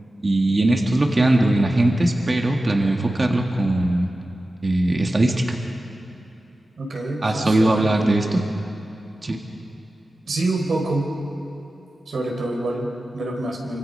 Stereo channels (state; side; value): normal; both; correlation 0.94